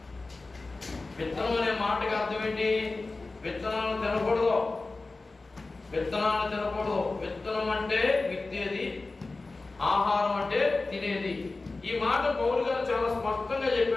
విత్తనం అనే మాటకి అర్థం ఏంటి? విత్తనాలను తినకూడదు, విత్తనాలను తినకూడదు. విత్తనం అంటే విత్తేది, ఆహారం అంటే తినేది. ఈ మాట పౌలు గారు చాలా స్పష్టంగా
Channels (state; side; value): quieter; right; 3.5 dB